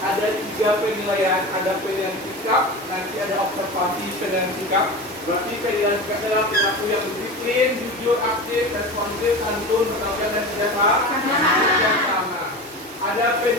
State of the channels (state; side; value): normal; both; correlation 0.29